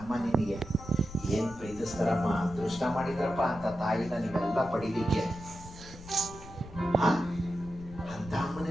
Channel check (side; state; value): left; noise; rumble, 16 dB below the sound